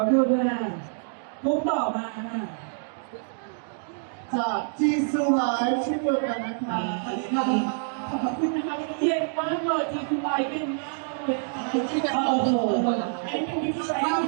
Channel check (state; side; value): silent; left; digital silence